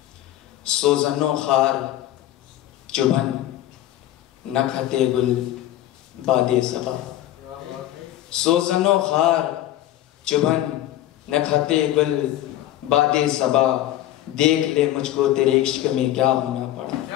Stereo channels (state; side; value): quieter; right; 13.7 dB